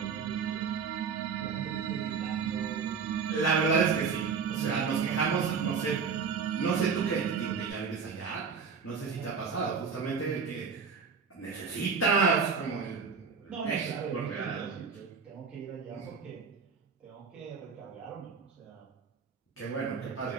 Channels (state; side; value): quieter; left; 5.8 dB